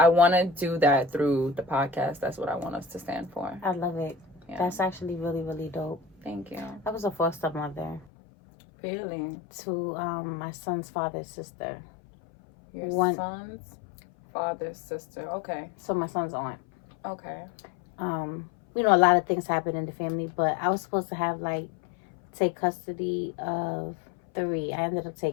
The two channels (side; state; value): right; drops out; at 8.1 s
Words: want to do that through the podcast. That's what I want us to stand for. I love it. Yeah. That's actually really, really dope. Thank you. I was a foster mother. Really? To my son's father's sister. Your son's father's sister. Okay. So my son's aunt. Okay. A lot of things happen in the family, but I was supposed to have take custody of 3. I ended up